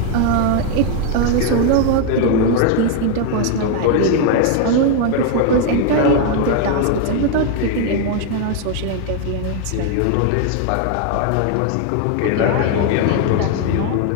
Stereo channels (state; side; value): different; both; correlation 0.01